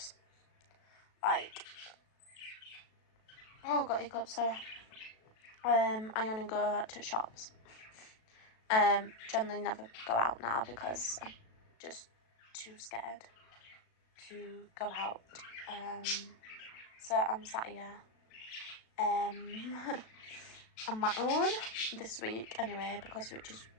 Like, oh, got hiccups, sorry. I only go to shops. Generally never go out now because I'm just too scared to go out. So I'm sat here on my own this week anyway, because Rich is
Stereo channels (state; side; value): late; right; 37 ms